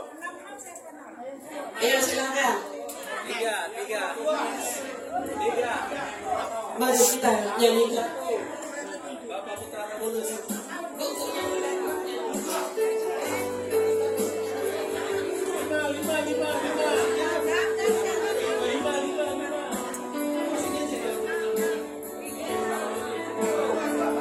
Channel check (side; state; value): both; identical; correlation 1.00